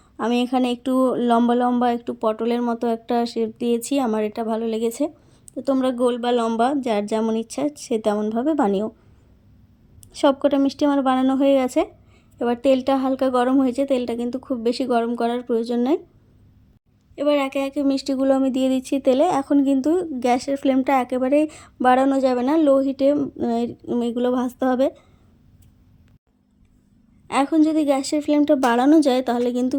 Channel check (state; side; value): identical; both; correlation 1.00